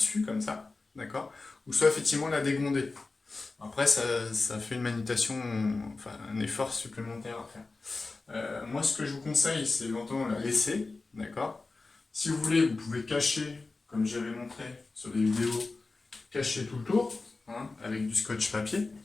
comme ça, d'accord, ou soit effectivement la dégonder. Après ça fait une manutention, enfin un effort supplémentaire à faire. Moi ce que je vous conseille, c'est éventuellement la laisser, d'accord. Si vous voulez, vous pouvez cacher, comme j'avais montré sur des vidéos, cacher tout le tour, hein, avec du scotch papier.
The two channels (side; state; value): right; quieter; 3.6 dB